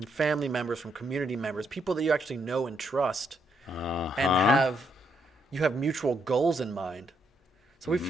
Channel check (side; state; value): both; normal; correlation 0.75